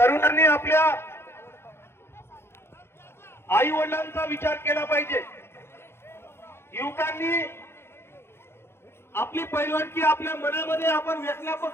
आपल्या आई वडिलांचा विचार केला पाहिजे। युवकांनी आपली पैलवानकी आपल्या मनामध्ये आपण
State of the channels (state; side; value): late; right; 0.12 ms